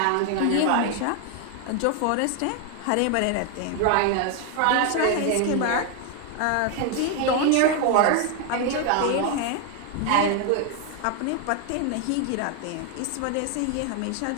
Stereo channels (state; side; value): different; both; correlation 0.01